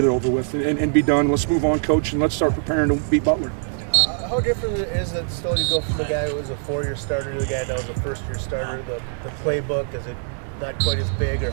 it over with and be done. Let's move on, coach, and let's start preparing to beat Butler. How different is it still to go from the guy who was a four-year starter to the guy that was a first-year starter? The playbook, is it not quite as big, or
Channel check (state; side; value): silent; left; 64 dB below the other